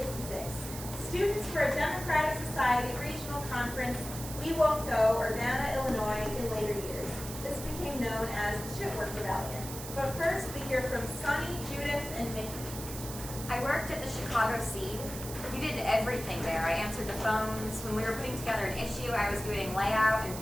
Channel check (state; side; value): noise; right; hiss, 10 dB below the sound